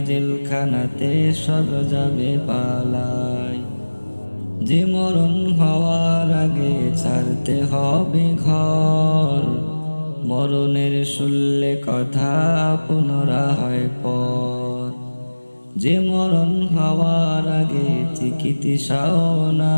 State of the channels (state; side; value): inverted; both; correlation -1.00